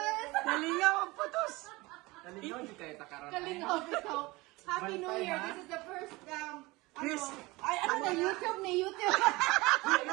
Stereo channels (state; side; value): quieter; left; 22.2 dB